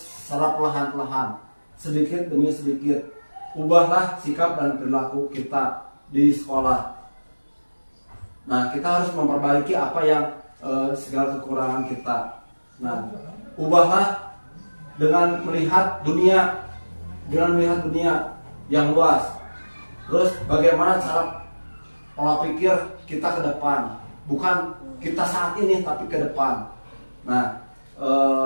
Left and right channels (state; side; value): inverted; both; correlation -1.00